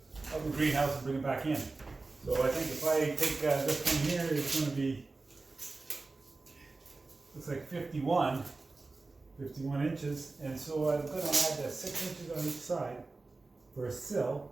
greenhouse and bring it back in. So I think if I take this one here, it's going to be, looks like 51 inches, and so I'm going to add 6 inches on each side for a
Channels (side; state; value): left; quieter; 3.6 dB